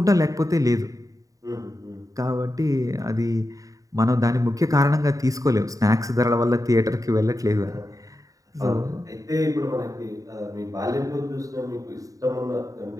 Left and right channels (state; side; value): late; left; 0.16 ms